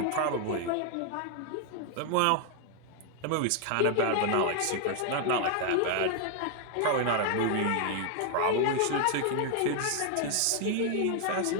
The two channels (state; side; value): different; both; correlation 0.00